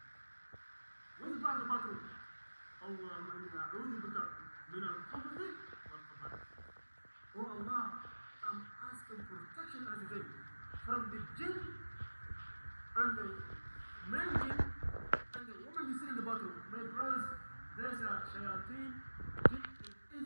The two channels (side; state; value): both; inverted; correlation -1.00